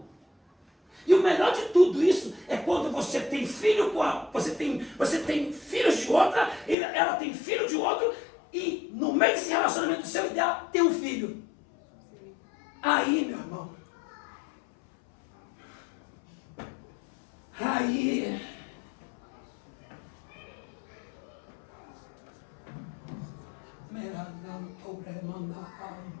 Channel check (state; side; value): drops out; right; at 6.8 s